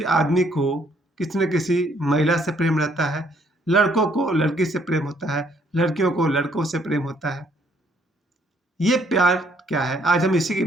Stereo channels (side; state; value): both; normal; correlation 0.66